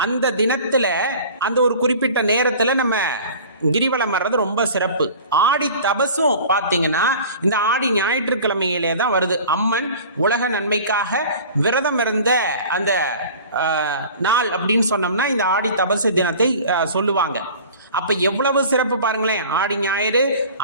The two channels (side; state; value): both; inverted; correlation -0.42